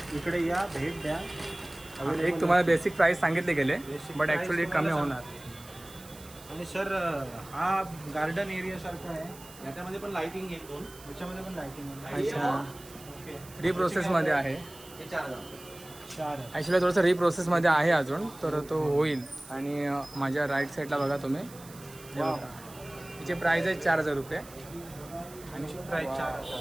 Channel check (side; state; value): right; noise; hiss, 19 dB below the sound